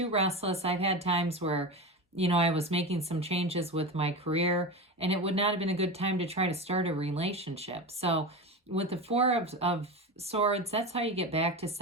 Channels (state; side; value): normal; both; correlation 0.24